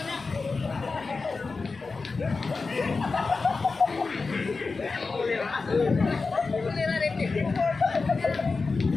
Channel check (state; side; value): quieter; right; 4.2 dB